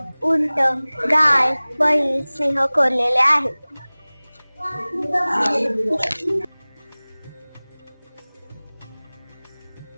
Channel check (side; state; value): both; inverted; correlation -1.00